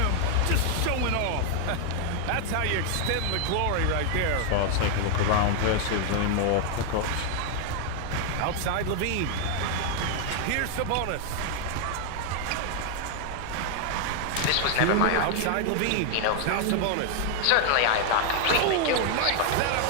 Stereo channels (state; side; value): different; both; correlation 0.00